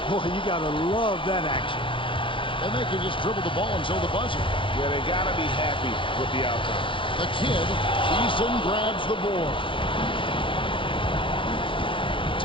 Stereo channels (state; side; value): late; right; 0.25 ms